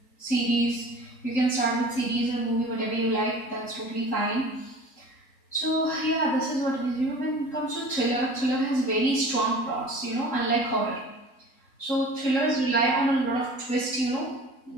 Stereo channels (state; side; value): late; right; 3.8 ms